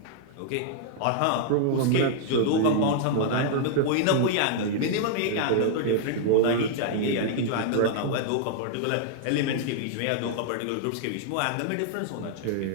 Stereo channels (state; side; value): different; both; correlation 0.00